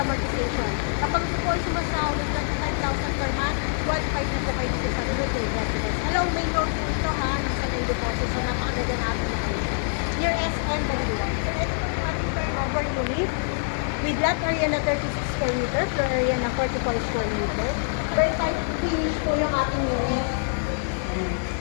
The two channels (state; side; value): silent; right; 61 dB below the other